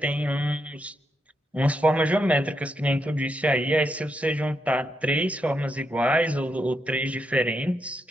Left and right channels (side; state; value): both; normal; correlation 0.81